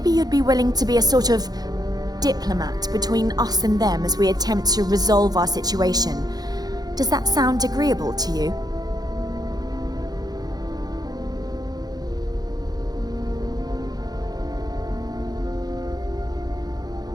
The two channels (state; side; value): late; left; 0.19 ms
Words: you'd be willing to be a sort of diplomat between us and them as we attempt to resolve our situation. Does that sound agreeable to you?